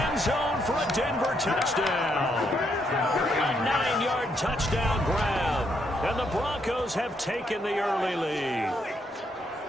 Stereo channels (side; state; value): both; normal; correlation 0.76